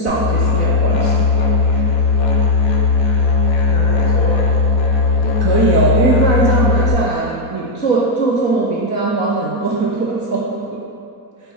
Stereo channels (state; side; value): late; right; 4.2 ms